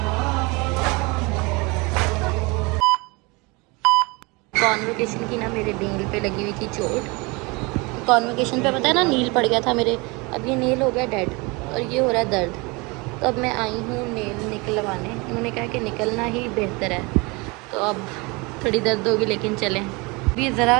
कॉन्वोकेशन की ना मेरे नील पे लगी हुई थी चोट। कॉन्वोकेशन पे पता है ना नील पड़ गया था मेरे, अब ये नील हो गया डेड और ये हो रहा है दर्द। तो अब मैं आई हूँ नेल निकलवाने, उन्होंने कहा कि निकलना ही बेहतर है। तो अब थोड़ी दर्द होगी लेकिन चलें। ये ज़रा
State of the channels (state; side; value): quieter; left; 26.8 dB